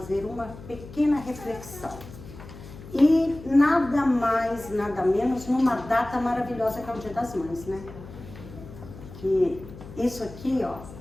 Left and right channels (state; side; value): noise; left; hum, 16 dB below the sound